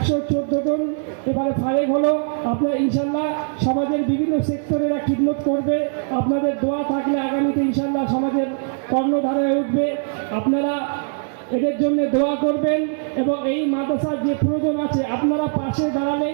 জন এবারে ফারেক হলো। আপনারা ইনশাল্লাহ সমাজের বিভিন্ন সেক্টরেরা খিদমত করবে। আপনাদের দোয়া থাকলে আগামীতে ইনশাল্লাহ সমাজের কর্ণধারায় উঠবে। আপনারা এদের জন্য দোয়া করবেন এবং এই মাদ্রাসার যে প্রয়োজন আছে আপনারা পাশে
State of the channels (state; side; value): silent; left; 61 dB below the other